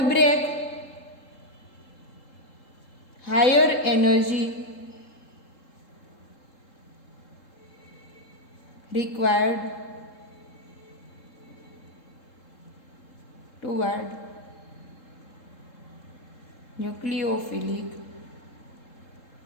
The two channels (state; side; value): late; right; 3.8 ms